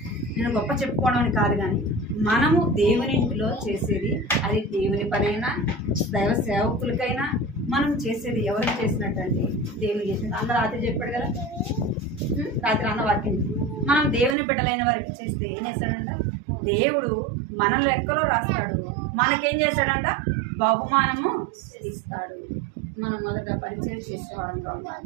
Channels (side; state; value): left; drops out; at 14.4 s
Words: నేను గొప్ప చెప్పుకోవడం అని కాదు, కానీ మనము దేవుని ఇంటిలో చేసేది అది దేవుని పనైనా దైవ సేవకులకైనా మనం చేసేది ఎవరికి చేసినట్టు అంటే దేవుని చేసినట్టు. అందరూ రాత్రి చెప్పాడు కదా, రాత్రి అన్న వాక్యం మనం దేవుని బిడ్డలైన వారికి చేస్తే ఏం చేస్తాడంట? దేవుడు మన లెక్కలో రాస్తాడు, మనకేం చేస్తాడంట? బహుమానము ఇస్తాడు. మనం మొదట పరిచయం చేసేవాళ్ళంతా